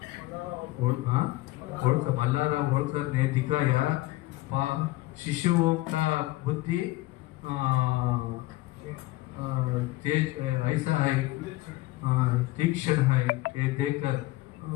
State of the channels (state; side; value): quieter; right; 18.4 dB